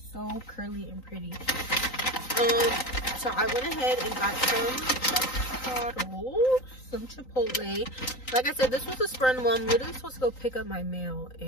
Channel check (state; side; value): late; right; 3.9 ms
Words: so curly and pretty. So I went ahead and got some Chipotle. Like I said, this was a spur in the moment. I'm literally supposed to go pick up my mail,